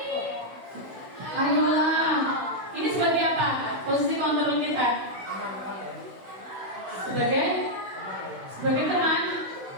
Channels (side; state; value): left; late; 16 ms